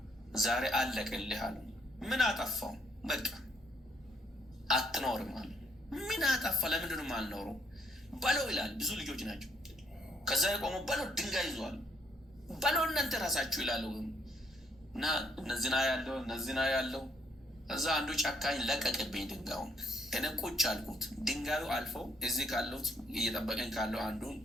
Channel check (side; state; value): both; normal; correlation 0.70